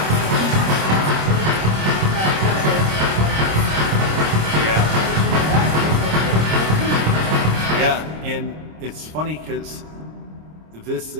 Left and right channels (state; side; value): late; left; 26 ms